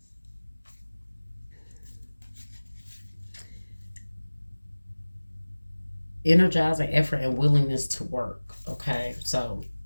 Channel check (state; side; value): inverted; both; correlation -1.00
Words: Energizing effort and willingness to work, okay? So